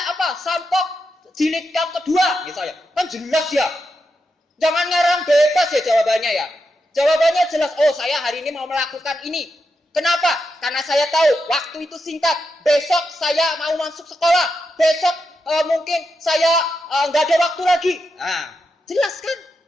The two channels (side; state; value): both; normal; correlation 0.86